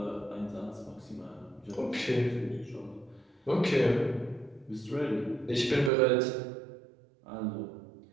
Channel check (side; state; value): left; drops out; at 5.9 s